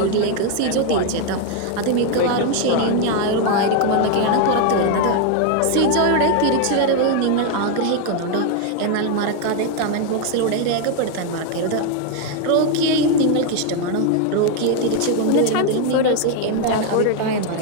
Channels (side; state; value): both; different; correlation 0.01